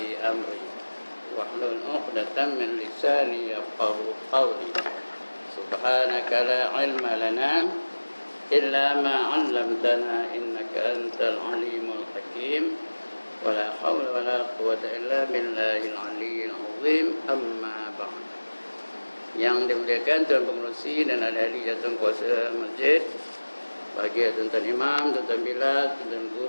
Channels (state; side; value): inverted; both; correlation -1.00